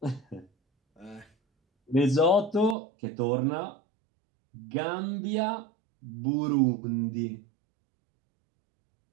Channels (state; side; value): drops out; left; at 2.8 s